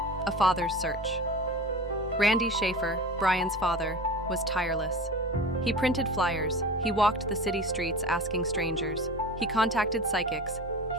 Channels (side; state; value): both; normal; correlation 0.34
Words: A Father's Search. Randy Shaffer, Brian's father, was tireless. He printed flyers, he walked the city streets asking strangers, he contacted psychics,